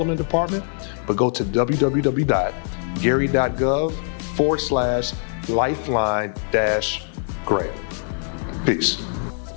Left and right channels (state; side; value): silent; right; 64 dB below the other